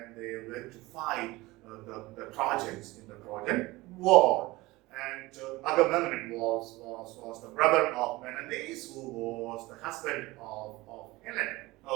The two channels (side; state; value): left; quieter; 20.5 dB